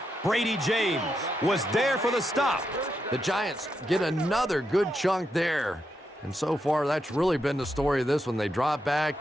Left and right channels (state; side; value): normal; both; correlation 0.84